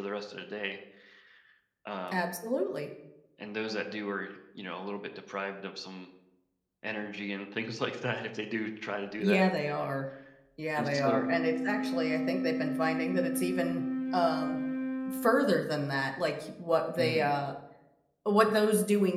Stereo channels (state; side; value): identical; both; correlation 1.00